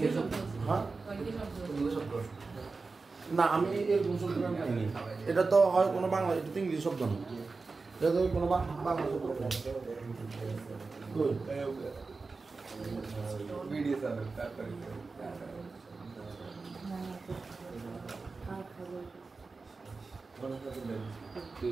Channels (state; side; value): quieter; left; 4.1 dB